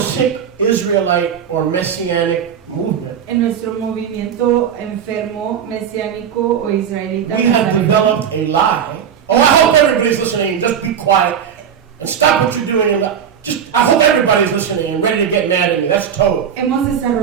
Israelite or Messianic movement, En nuestro movimiento enfermo, mesiánico o israelita, we have developed a lie. Oh, I hope everybody's listening. Just be quiet and stop what you're doing. I hope everybody's listening and ready to get mad at me. That's total.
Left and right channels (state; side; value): quieter; left; 8.2 dB